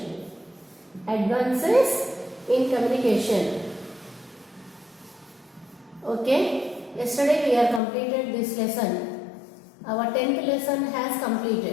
Advances in Communication. Okay. Yesterday we are completed this lesson. Our 10th lesson has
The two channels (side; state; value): right; drops out; at 7.8 s